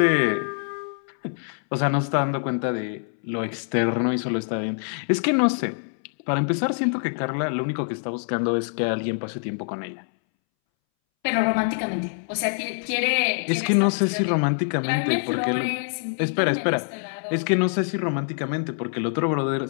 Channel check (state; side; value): silent; right; 62 dB below the other